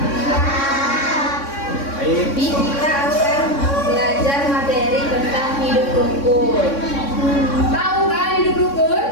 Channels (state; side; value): late; right; 3.6 ms